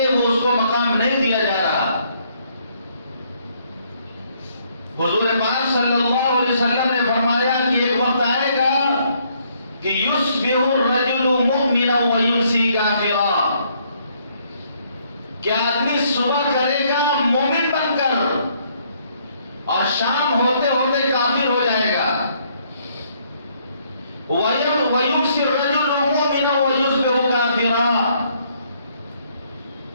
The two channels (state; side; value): inverted; both; correlation -0.68